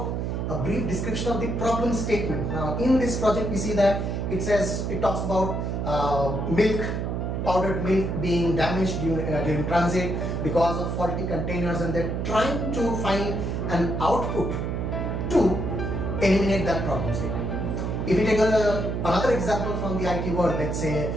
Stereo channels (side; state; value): right; noise; hum, 2 dB below the sound